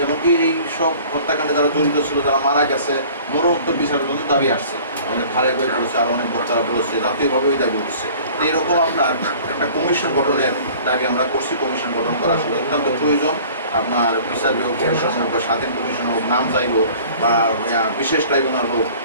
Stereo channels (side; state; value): both; inverted; correlation -0.47